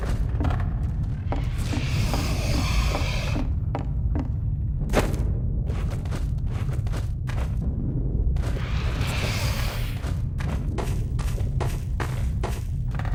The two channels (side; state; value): both; identical; correlation 1.00